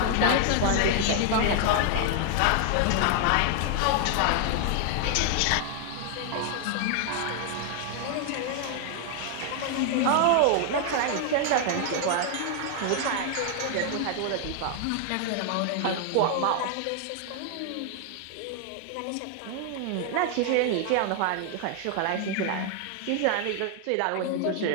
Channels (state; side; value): different; both; correlation 0.00